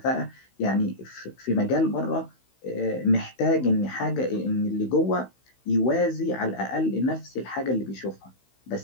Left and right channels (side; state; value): right; late; 16 ms